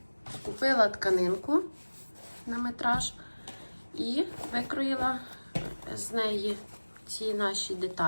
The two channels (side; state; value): both; inverted; correlation -1.00